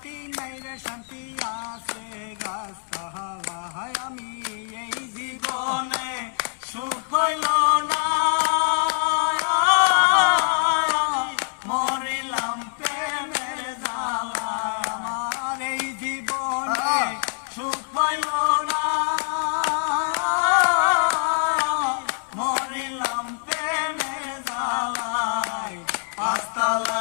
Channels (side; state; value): right; silent; 62 dB below the other